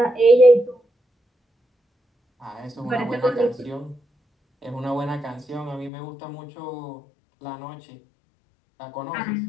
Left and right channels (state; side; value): drops out; right; at 5.9 s